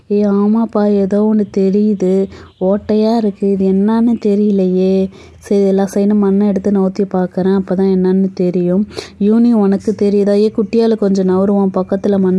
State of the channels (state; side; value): identical; both; correlation 1.00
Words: ஆமாப்பா ஏதோ ஒன்று தெரியுது, ஓட்டையாக இருக்குது, இது என்னன்னு தெரியலையே. சரி எல்லா சைடும் மண்ணை எடுத்து நவுத்தி பார்க்குறேன், அப்போ தான் என்னன்னு தெரியும். யூனி உனக்கு தெரியுதா? குட்டியால் கொஞ்சம் நவருவான், பக்கத்தில்